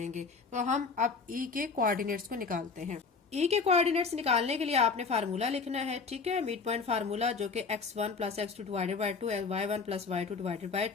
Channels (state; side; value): quieter; right; 4.8 dB